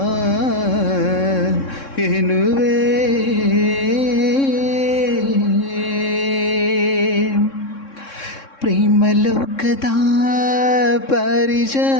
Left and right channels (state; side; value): late; right; 3.6 ms